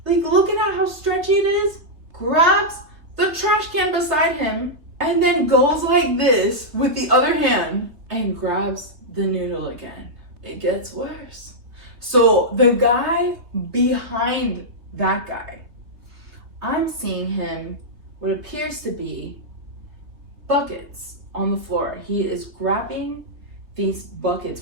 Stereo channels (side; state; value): left; late; 3.3 ms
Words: like looking at how stretchy it is, grabs the trash can beside him, and then goes like this with the other hand and grabs the noodle again. It gets worse. So the guy behind that guy, I'm seeing him what appears to be buckets on the floor. He is grabbing these buckets.